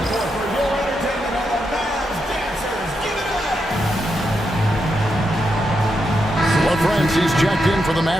Well, friends, he's checked in for the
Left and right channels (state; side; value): normal; both; correlation 0.84